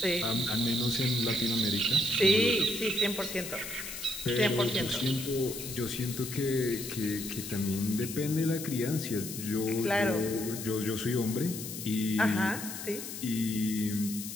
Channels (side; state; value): left; noise; hiss, 8 dB below the sound